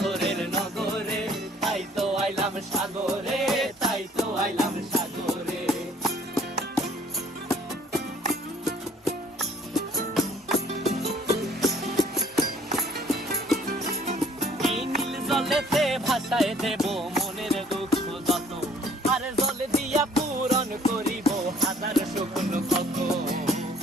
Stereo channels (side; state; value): both; normal; correlation 0.58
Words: নগরে, তাই তো আইলাম সাগরে, তাই তো আইলাম সাগরে। এই নীল জলেতে ভাসায় দেব মনের দুঃখ যত, আর জলে দিয়া পূরণ করিব হাজার স্বপ্ন কত।